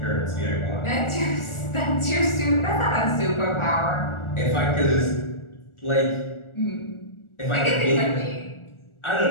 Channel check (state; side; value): late; right; 1.4 ms